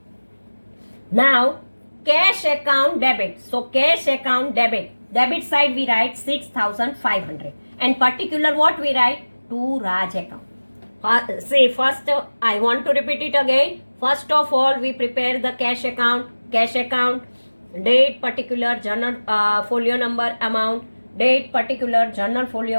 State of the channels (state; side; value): inverted; both; correlation -1.00